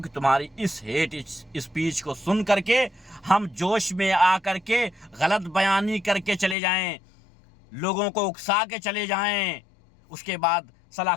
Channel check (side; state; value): right; drops out; at 6.6 s